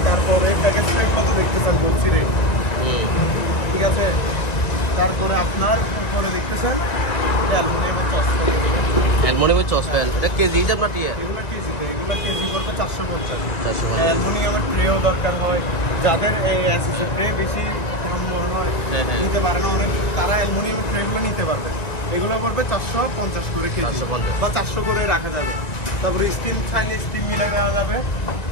তারপরে প্যাকেজ ট্যাগ কত দেখতেছেন বলছি রে, ঠিক আছে। তারপরে আপনার উপরে দেখতেছেন অ্যালুমিনিয়ামের চশমা, অ্যালুমিনিয়ামের চসপ্যান, এটা কেজি হিসাব না টিয়া? এগুলো কেজিতে, এগুলো কেজি করতে 450। 450। অ্যালুমিনিয়ামের ট্রেও দরকার হয়, যাদের অ্যাসেসের ট্রে বেশি নিতে পারে না অনেক, তারা অ্যালুমিনিয়ামের ট্রেগুলো নিতে পারবে। এগুলো পড়বে 450 করে কেজি 450 বা 400 করে রাখা যাবে। তারপরে স্টিল চাইলে স্টিল মিলে দেওয়া যাবে।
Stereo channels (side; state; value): right; late; 1.9 ms